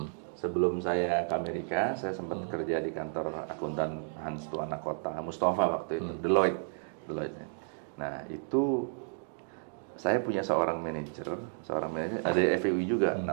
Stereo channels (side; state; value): left; silent; digital silence